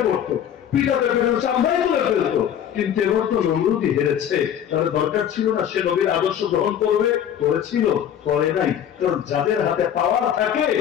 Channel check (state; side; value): quieter; right; 9.6 dB